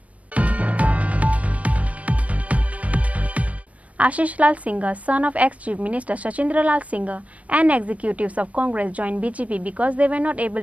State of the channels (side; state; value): left; late; 0.067 ms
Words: Ashish Lal Singh, son of ex-Chief Minister Sachindra Lal Singh, and executives of Congress joined BJP because they were not